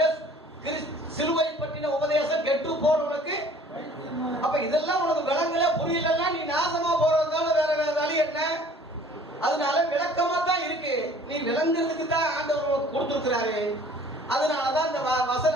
சிலுவை பற்றின உபதேசம் கெட்டு போறவனுக்கு. அப்ப இதெல்லாம் உனக்கு விளங்கல புரியலன்னா நீ நாசமா போறதுனால வேற வழி என்ன? அதனால விளக்கமா தான் இருக்கு. நீ விளங்குறதுக்கு தான் ஆண்டவர் கொடுத்திருக்கிறாரு. அதனாலதான் இந்த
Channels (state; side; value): normal; both; correlation 0.52